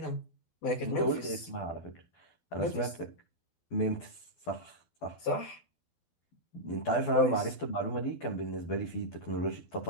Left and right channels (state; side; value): late; right; 12 ms